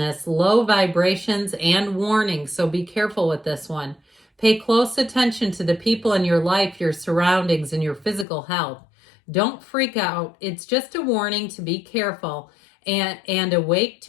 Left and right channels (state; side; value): drops out; right; at 8.2 s